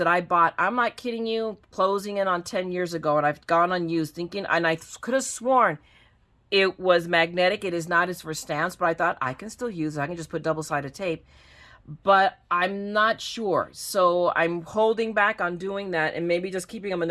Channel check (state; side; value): identical; both; correlation 1.00